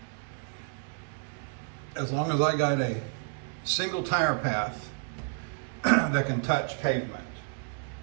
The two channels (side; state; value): left; quieter; 39.1 dB